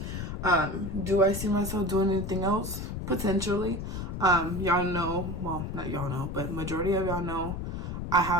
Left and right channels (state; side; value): noise; left; rumble, 5 dB below the sound